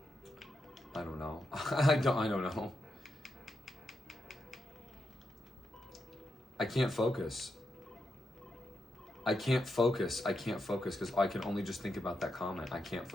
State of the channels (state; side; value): normal; both; correlation 0.85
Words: I don't know. I don't know. I can't focus. I can't focus because I can only just think about that comment. I can't